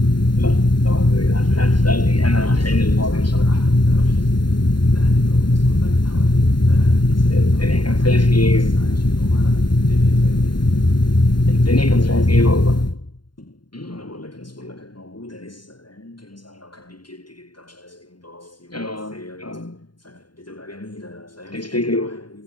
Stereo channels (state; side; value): late; right; 0.72 ms